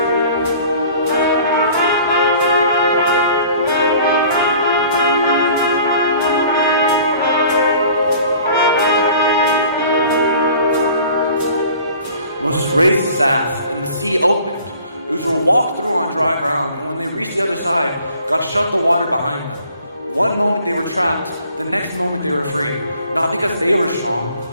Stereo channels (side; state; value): both; inverted; correlation -0.50